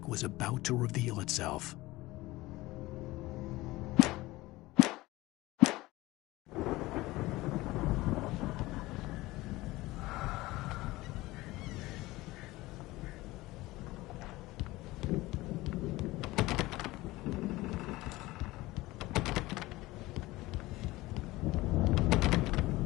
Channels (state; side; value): quieter; right; 19.2 dB